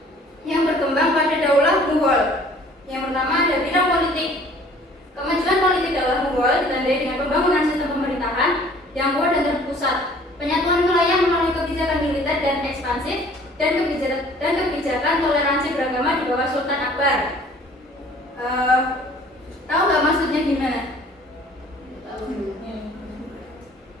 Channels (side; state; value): both; normal; correlation 0.53